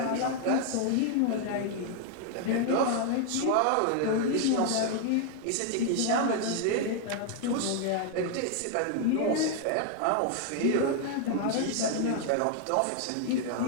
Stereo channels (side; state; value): both; different; correlation 0.00